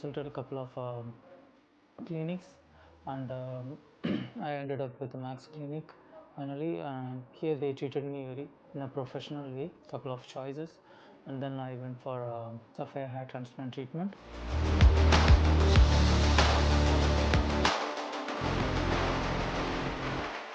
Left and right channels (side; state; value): both; identical; correlation 1.00